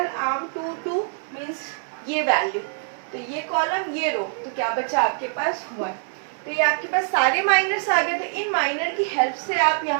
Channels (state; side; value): silent; left; digital silence